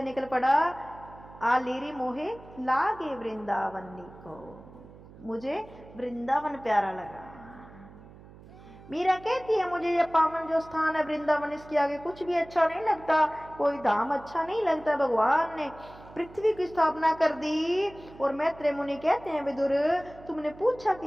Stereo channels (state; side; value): noise; right; hum, 20 dB below the sound